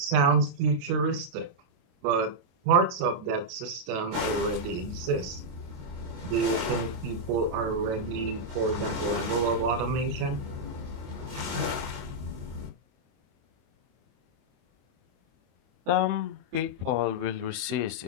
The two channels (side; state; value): left; late; 23 ms